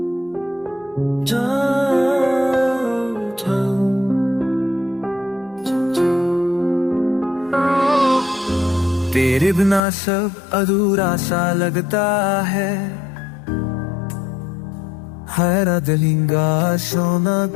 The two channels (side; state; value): right; drops out; at 9.8 s